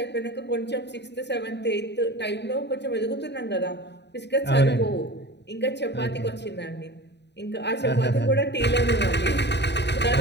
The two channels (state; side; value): late; right; 0.50 ms